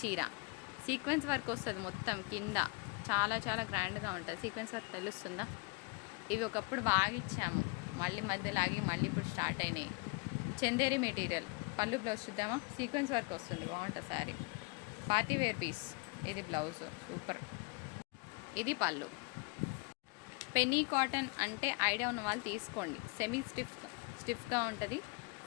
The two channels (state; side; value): quieter; right; 29.5 dB